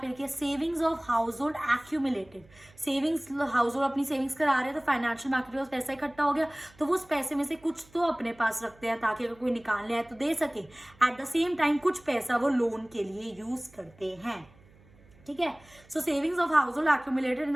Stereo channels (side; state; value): right; noise; hum, 27 dB below the sound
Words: लिखी है, savings of household accumulated. Savings, house hold अपनी सेविंग्स करा रहे हैं तो फाइनेंशियल मार्केट के पास पैसा इकट्ठा हो गया तो वो उस पैसे में से कुछ तो अपने पास रखते हैं ताकि अगर कोई निकालने आए तो दे सके। एट द सेम टाइम कुछ पैसा वो लोन के लिए यूज करते हैं, ठीक है। So savings of household accumulated in